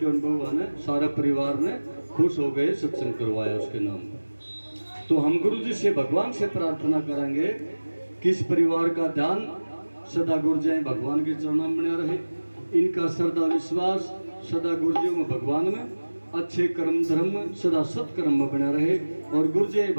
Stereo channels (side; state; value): both; inverted; correlation -1.00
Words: ने, बउआ ने, सारा परिवार ने खुश हो गए, सत्संग करवाया उसके नाम पर। तो हम गुरु जी से, भगवान से प्रार्थना करेंगे कि इस परिवार का ध्यान सदा गुरु जी भगवान के चरणों में बना रहे। इनका श्रद्धा विश्वास सदा गुरु जी में, भगवान में, अच्छे कर्म धर्म में, सदा सत्कर्म में बना रहे। और गुरु जी